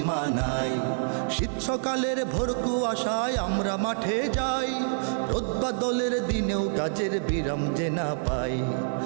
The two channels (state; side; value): silent; left; 60 dB below the other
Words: নাই। শীত সকালের ভোর কুয়াশায় আমরা মাঠে যাই, রোদ বাদলের দিনেও কাজের বিরাম যে না পাই।